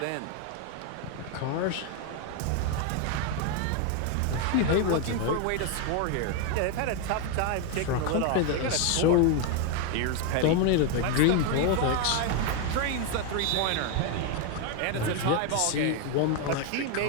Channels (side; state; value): both; different; correlation 0.01